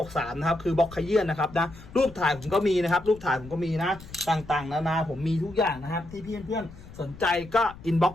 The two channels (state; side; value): noise; left; rumble, 18 dB below the sound